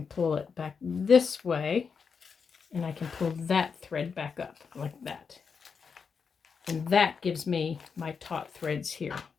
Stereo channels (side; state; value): right; quieter; 5.8 dB